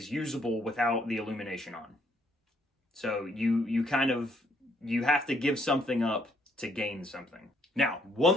usable without the illumination on. So you have to give something up to gain something. Now, one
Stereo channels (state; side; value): normal; both; correlation 0.68